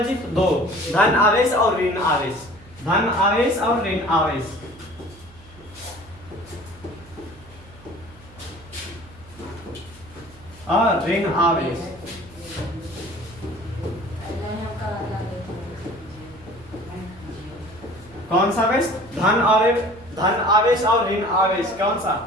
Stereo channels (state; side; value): noise; right; hum, 23 dB below the sound